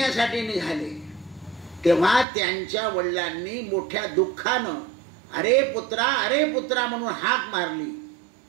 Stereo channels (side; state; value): left; drops out; at 2.2 s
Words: निघाले. तेव्हा त्यांच्या वडिलांनी मोठ्या दुःखानं अरे पुत्रा म्हणून हाक मारली.